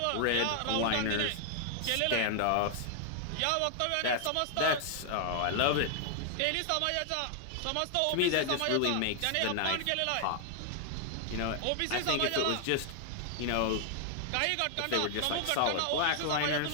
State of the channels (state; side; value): different; both; correlation 0.00